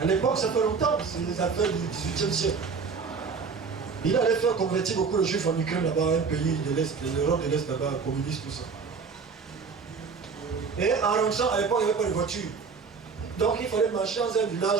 À l'époque, ça fait longtemps, c'est les affaires du XVIIIe siècle. Il allait faire convertir beaucoup de juifs en Ukraine, là-bas, un pays de l'Est, de l'Europe de l'Est, là-bas, communiste, tout ça. Et en rentrant, à l'époque, il n'y avait pas de voiture. Donc il fallait marcher dans un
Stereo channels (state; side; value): quieter; left; 5.3 dB